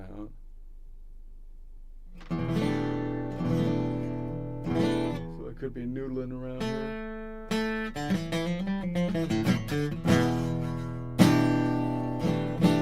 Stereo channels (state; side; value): identical; both; correlation 1.00